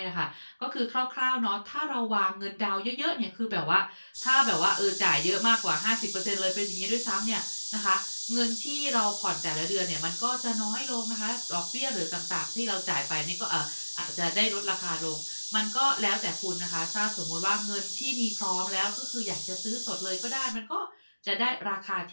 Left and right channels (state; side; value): inverted; both; correlation -1.00